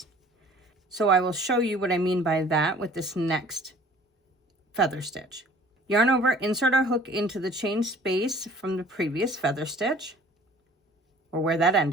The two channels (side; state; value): both; normal; correlation 0.51